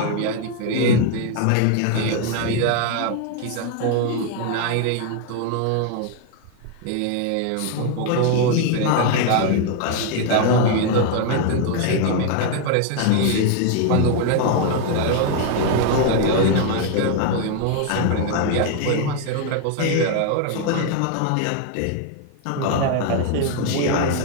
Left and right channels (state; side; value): different; both; correlation 0.00